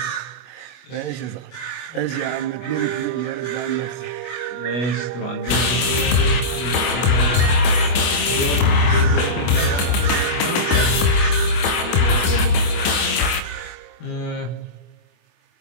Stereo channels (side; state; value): right; late; 24 ms